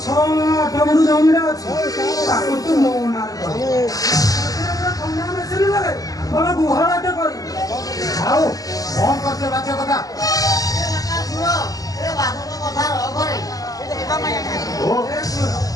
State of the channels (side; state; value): right; late; 0.17 ms